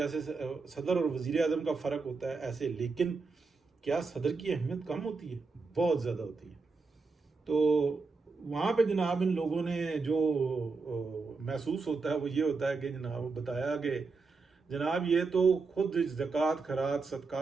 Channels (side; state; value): left; quieter; 4.3 dB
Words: सदर और वजीर आजम का फ़र्क होता है ऐसे। लेकिन क्या सदर की अहमियत कम होती है? बहुत ज़्यादा होती है। तो वहाँ पे जनाब इन लोगों ने जो महसूस होता है वो ये होता है कि जनाब बताया कि जनाब ये तो खुद ज़कात खरात